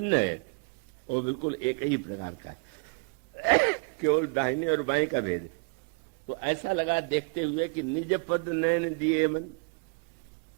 है वो बिल्कुल एक ही प्रकार का है, केवल दाहिने और बाएं का भेद है। तो ऐसा लगा देखते हुए कि निज पद नयन दिए मन,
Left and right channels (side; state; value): left; quieter; 34.2 dB